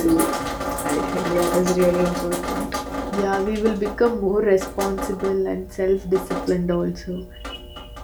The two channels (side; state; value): both; identical; correlation 1.00